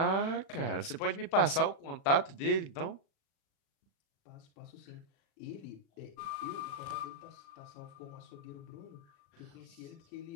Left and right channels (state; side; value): late; right; 36 ms